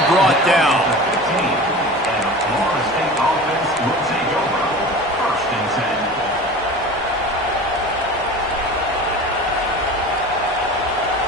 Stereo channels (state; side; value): normal; both; correlation 0.35